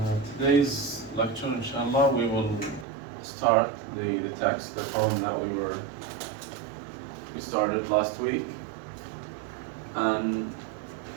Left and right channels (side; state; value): left; drops out; at 2.9 s